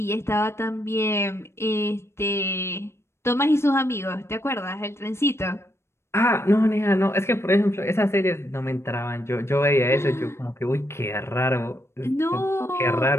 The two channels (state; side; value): late; right; 0.13 ms